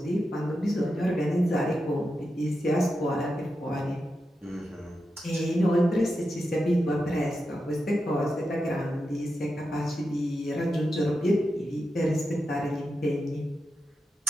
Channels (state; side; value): normal; both; correlation 0.89